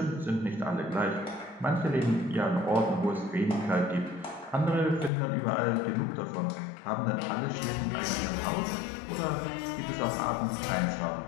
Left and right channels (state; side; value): drops out; right; at 5.1 s